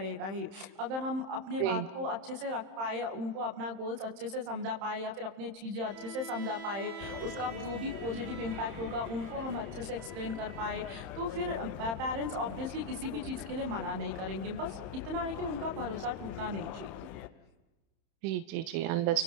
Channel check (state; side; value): late; left; 31 ms